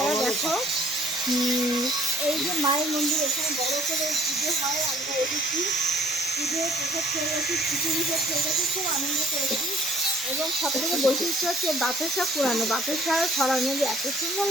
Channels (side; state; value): both; normal; correlation 0.57